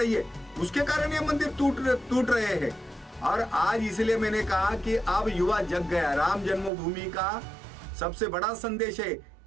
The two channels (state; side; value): drops out; left; at 6.7 s